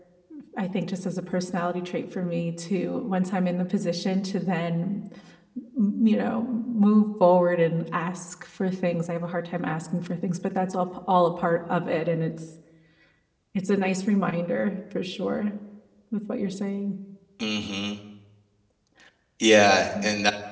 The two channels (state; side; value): identical; both; correlation 1.00